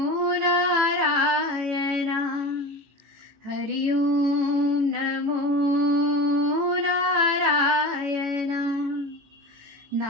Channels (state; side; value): late; left; 18 ms